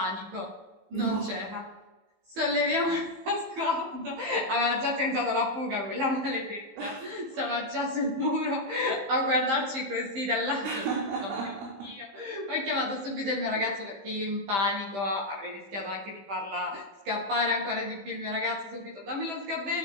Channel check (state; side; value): late; left; 15 ms